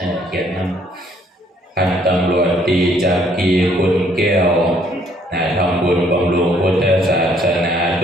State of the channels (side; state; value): both; normal; correlation 0.64